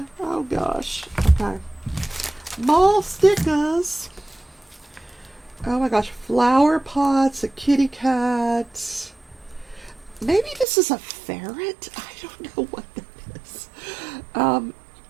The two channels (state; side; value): drops out; left; at 10.7 s